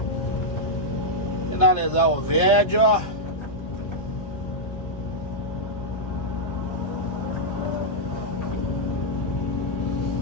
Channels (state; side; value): late; right; 1.5 ms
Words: Finalizar o vídeo.